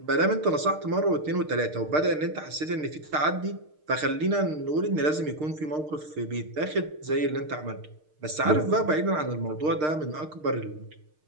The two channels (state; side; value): late; left; 6.5 ms